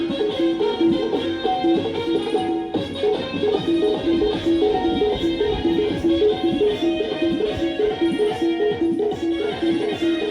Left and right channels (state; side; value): identical; both; correlation 1.00